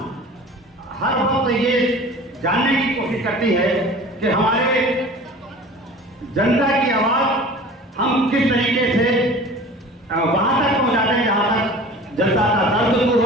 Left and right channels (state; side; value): normal; both; correlation 0.41